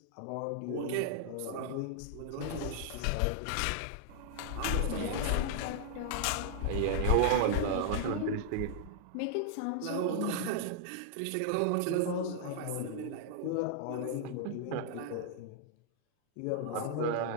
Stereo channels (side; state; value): both; different; correlation -0.01